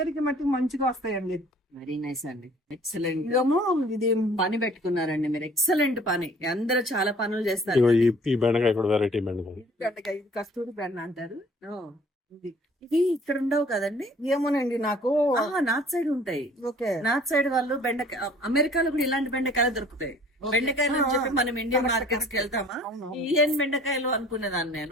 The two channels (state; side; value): normal; both; correlation 0.53